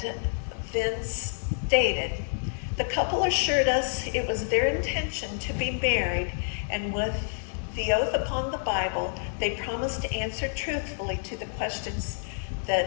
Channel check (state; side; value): silent; right; 58 dB below the other